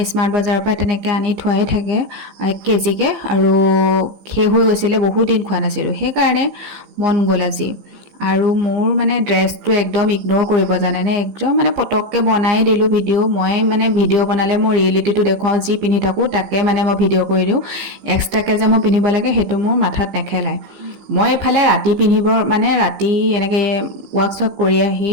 স্মাৰ্ট বজাৰৰ পৰা তেনেকৈ আনি থোৱাই থাকে 1 কেজিকৈ আৰু শেষ হৈ গৈছিলে বহুত দিন খোৱা নাছিলোঁ সেইকাৰণে মন গ'ল আজি আৰু মোৰ মানে ড্ৰেছটো একদম ইগন'ৰ কৰিব জানেনে একদম মানে পটককৈ বনাই দিলোঁ ভিডিঅ' মই মানে ভিডিঅ' বনালে মই ৰিয়েলিটিটো দেখুৱাওঁ যি পিন্ধি থাকোঁ তাকে মানে মই ভিডিঅ' কৰি দিওঁ এক্সট্ৰাকৈ যে মই পিন্ধিব লাগে সেইটো মোৰ মাথাত নেখেলায় মই এইফালে ৰাতি পিন্ধিব মানে ৰাতি এনেকৈ ৱাৰ্কশ্বপ কৰি আহি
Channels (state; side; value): late; left; 15 ms